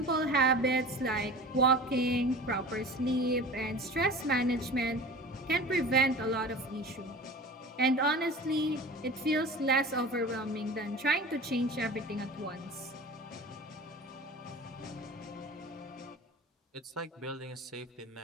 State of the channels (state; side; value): normal; both; correlation 0.37